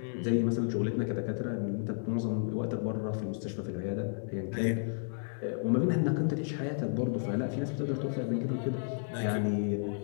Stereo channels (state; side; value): silent; right; digital silence